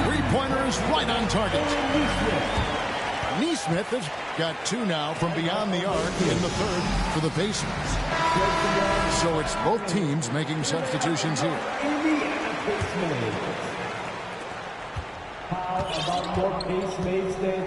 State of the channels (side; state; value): both; identical; correlation 1.00